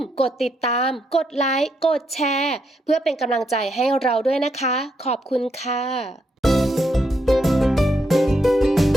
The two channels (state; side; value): normal; both; correlation 0.78